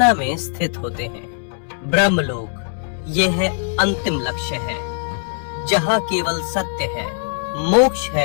में स्थित होते हैं। ब्रह्मलोक, यह है अंतिम लक्ष्य है, जहाँ केवल सत्य है, मोक्ष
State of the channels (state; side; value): silent; right; 65 dB below the other